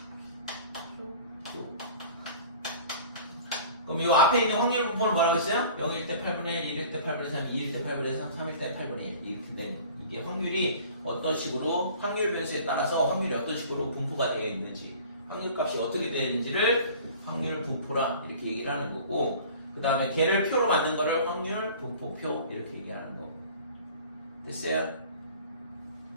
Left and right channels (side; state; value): both; inverted; correlation -0.46